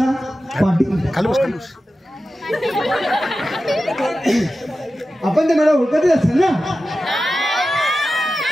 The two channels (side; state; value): both; normal; correlation 0.93